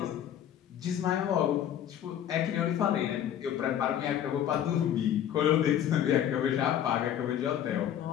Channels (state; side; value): quieter; right; 10.3 dB